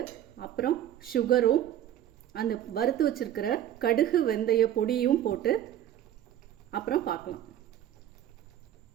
அப்புறம் சுகரும் அந்த வறுத்து வச்சுருக்கிற கடுகு வெந்தய பொடியும் போட்டு அப்புறம் பார்க்கலாம்.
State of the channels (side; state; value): left; quieter; 11.3 dB